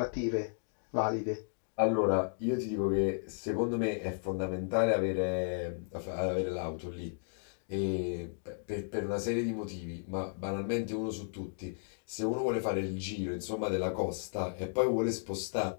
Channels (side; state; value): right; silent; digital silence